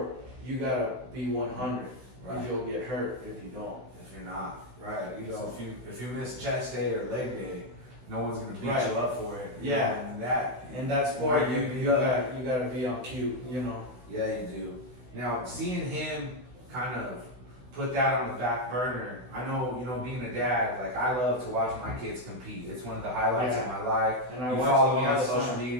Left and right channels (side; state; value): left; late; 16 ms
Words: you gotta be 100. Right. You'll get hurt if you don't. If you're not, right? If you miss chest day or leg day, no one's gonna beat you up for it. And that sport, you gotta be on cue. Yeah, you do. Now, seeing him kind of put that on the back burner, I know, being a dad, like I love to watch my kids compete. It's one of the highlights of my life. And you follow me on social